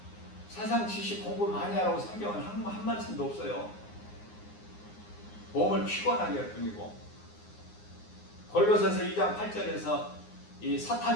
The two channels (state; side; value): late; right; 9.7 ms